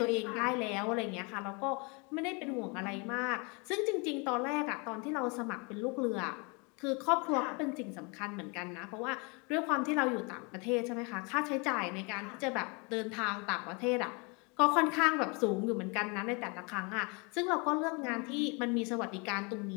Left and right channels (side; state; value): right; quieter; 31.3 dB